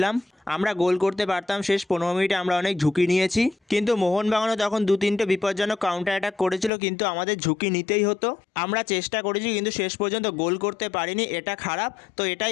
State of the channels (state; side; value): drops out; right; at 6.7 s